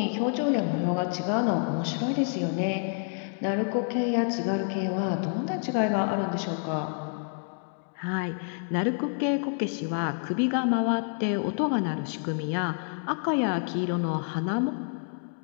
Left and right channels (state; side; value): silent; right; 59 dB below the other